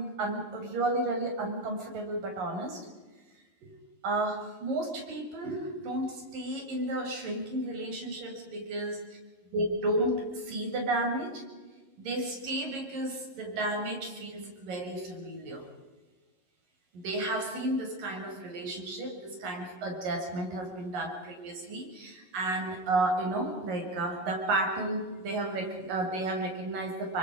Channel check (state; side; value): late; left; 11 ms